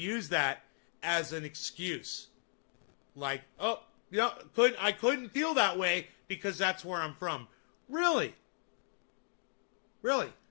that as an excuse. Like, oh, yeah, I couldn't feel that way because that's where I'm from. Really? Really?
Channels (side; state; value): right; silent; 53 dB below the other